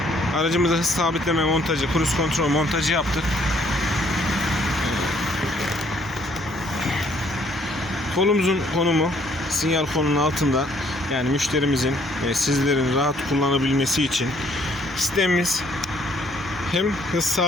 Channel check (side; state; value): both; normal; correlation 0.65